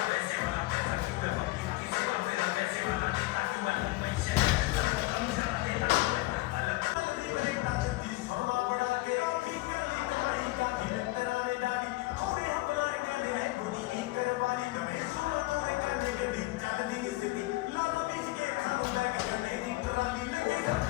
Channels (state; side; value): quieter; right; 20.7 dB